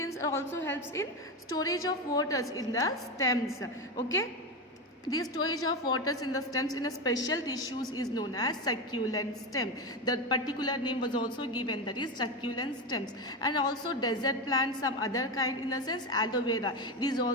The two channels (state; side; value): normal; both; correlation 0.16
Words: also helps in storage of waters in the stems, okay. The storage of waters in the stems in a special tissues is known as succulent stem. The particular name was also given, that is succulent stems. And also desert plants, some other kind, in the sense aloe vera. It is